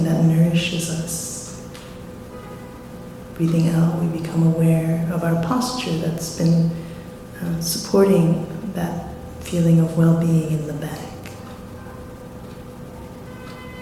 that nourishes us. breathing out, we become aware of our posture that's been supporting that feeling of well-being in the back.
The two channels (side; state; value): both; identical; correlation 1.00